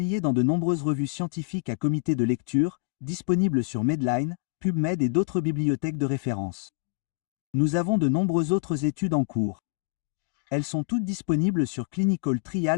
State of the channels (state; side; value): quieter; right; 31.7 dB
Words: dans de nombreuses revues scientifiques à comité de lecture, disponibles sur Medline, PubMed et d'autres bibliothèques de référence. Nous avons de nombreuses autres études en cours. Elles sont toutes disponibles sur